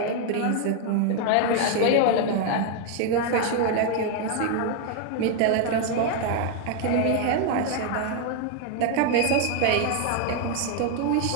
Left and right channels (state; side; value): different; both; correlation 0.01